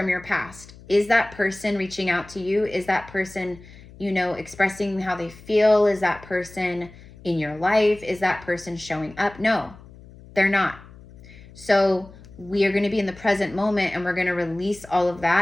your past. Is that person reaching out to you? Is that person, you know, expressing how they feel? Is that person in your life? Is that person showing up? No, they're not. So we are going to be in the present moment, and we're going to release all of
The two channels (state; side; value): noise; left; hum, 20 dB below the sound